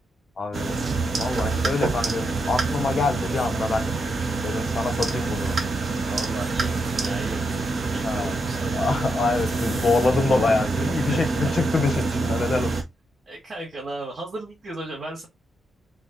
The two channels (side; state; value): both; normal; correlation 0.82